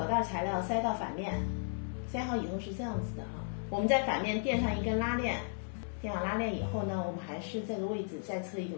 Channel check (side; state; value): right; silent; 55 dB below the other